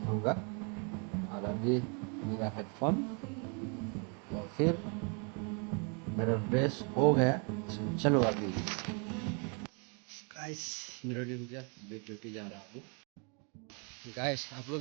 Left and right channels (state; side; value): quieter; left; 36.7 dB